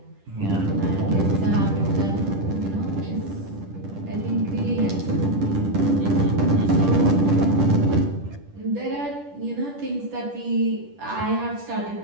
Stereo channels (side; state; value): left; late; 10 ms